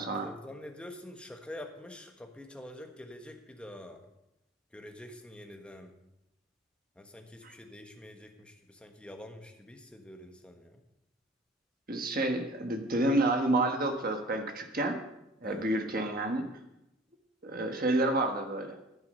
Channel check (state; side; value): normal; both; correlation 0.46